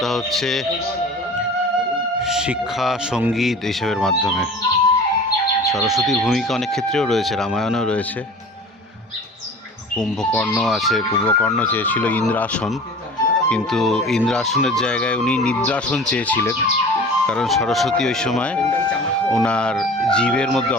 হচ্ছে শিক্ষা, সঙ্গীত এইসবের মাধ্যমে। সরস্বতীর ভূমিকা অনেক ক্ষেত্রেও রয়েছে, রামায়ণেও রয়েছে। কুম্ভকর্ণ আছে, কুম্ভকর্ণ চেয়েছিল ইন্দ্রাসন, কিন্তু ইন্দ্রাসনের জায়গায় উনি নিদ্রাসন চেয়েছিলেন, কারণ সরস্বতী ওই সময় ওনার জীবের মধ্যে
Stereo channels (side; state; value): both; normal; correlation 0.40